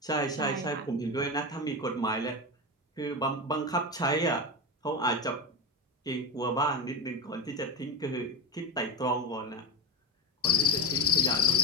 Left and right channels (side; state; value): both; normal; correlation 0.19